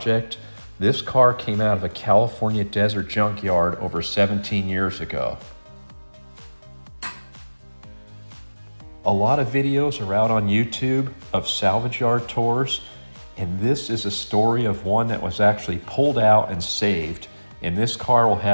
this car came out of a California desert junkyard over 17 years ago. A lot of videos are out on YouTube of salvage yard tours, and this is a story of one that was actually pulled out and saved, and this car will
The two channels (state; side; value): inverted; both; correlation -1.00